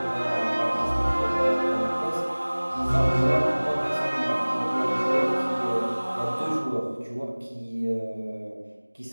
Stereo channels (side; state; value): both; inverted; correlation -1.00